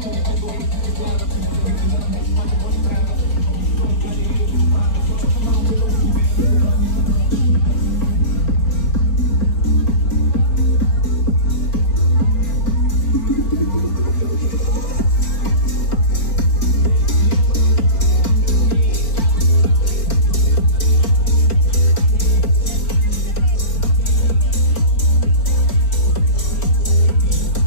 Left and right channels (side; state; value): right; late; 4.3 ms